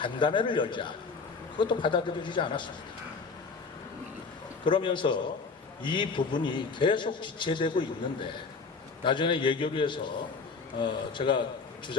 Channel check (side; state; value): right; quieter; 4.6 dB